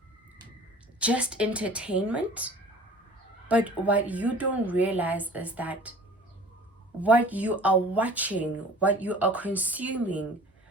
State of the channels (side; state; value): both; normal; correlation 0.45